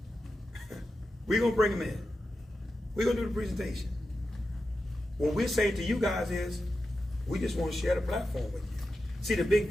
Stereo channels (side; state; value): both; normal; correlation 0.90